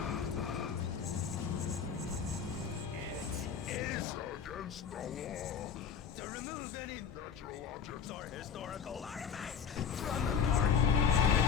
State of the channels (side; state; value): right; quieter; 7.0 dB